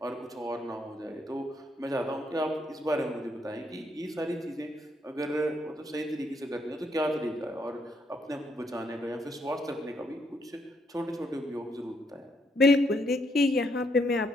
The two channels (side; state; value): both; normal; correlation 0.74